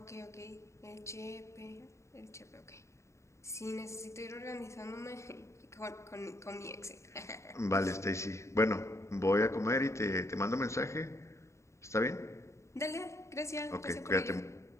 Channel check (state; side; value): late; right; 0.14 ms